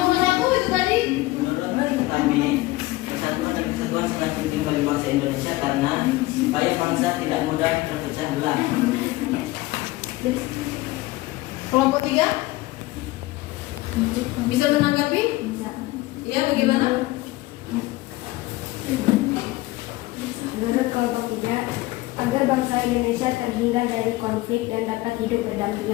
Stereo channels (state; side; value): quieter; right; 19.2 dB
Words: 1 itu tadi? Menurut kami, persatuan dan kesatuan sangat penting bagi bangsa Indonesia karena supaya bangsa tidak mudah terpecah belah. Kelompok 3 bisa menanggapi? Ya, bagaimana? Menurut kelompok 3, agar bangsa Indonesia terhindar dari konflik dan dapat hidup